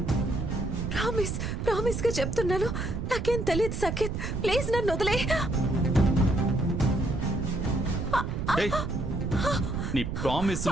ప్రామిస్ గా చెప్తున్నాను, నాకేం తెలియదు సఖిత్. ప్లీజ్ నన్ను వదిలే. ఏయ్, నీ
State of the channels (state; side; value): noise; right; rumble, 3 dB below the sound